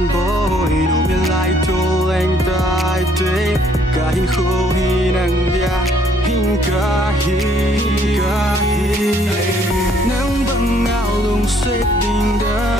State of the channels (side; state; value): both; normal; correlation 0.65